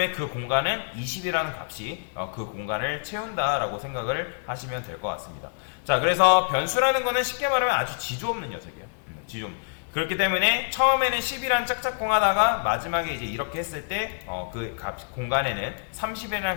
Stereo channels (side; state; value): right; silent; digital silence